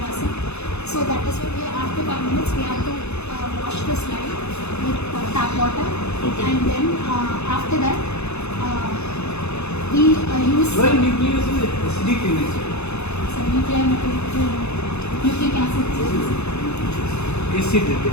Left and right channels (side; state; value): right; late; 0.80 ms